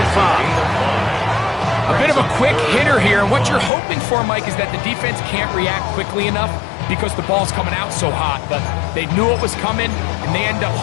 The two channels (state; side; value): drops out; right; at 3.7 s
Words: 5. A bit of a quick hitter here, and what you're hoping for, Mike, is that the defense can't react quickly enough because the ball's coming out so hot, but they knew it was coming, and they end up